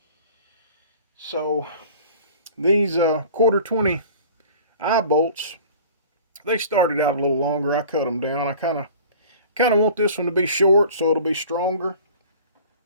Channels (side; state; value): both; inverted; correlation -0.45